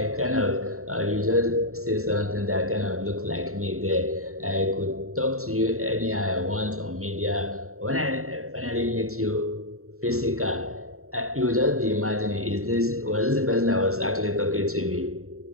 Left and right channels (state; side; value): late; left; 0.63 ms